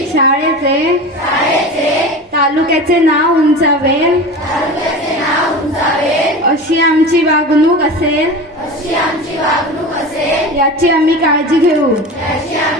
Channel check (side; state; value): both; normal; correlation 0.31